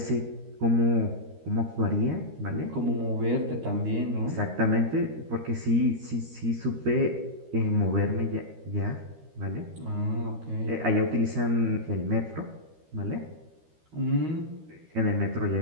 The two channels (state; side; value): late; left; 13 ms